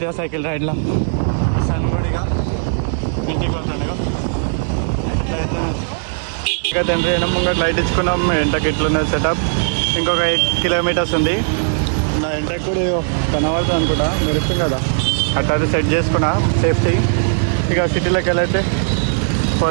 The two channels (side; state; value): left; silent; digital silence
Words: సైకిల్ రైడ్లో సన్గుడిగా ఇంటికి వస్తుండే. ఇక తండ్రి ముంగట లైట్ ఇచ్చుకున్నాం. ఎంటకి ఇట్లున్నది సెటప్. ఇంకొక 8 కిలోమీటర్స్ ఉంది. నా ఎంటకి కూడా కనబడుతుంది అనుకుంటా, మెరుస్తుంది కదా, అట్లా సెట్ చేసుకున్నా సేఫ్టీ. ఇక సిటీలోకి వెళ్ళైతే